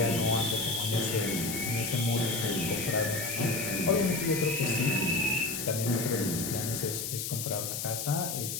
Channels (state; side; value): noise; left; hiss, 4 dB below the sound